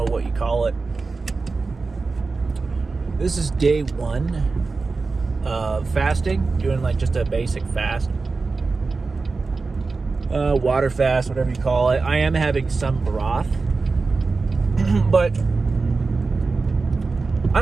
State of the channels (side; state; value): left; quieter; 4.1 dB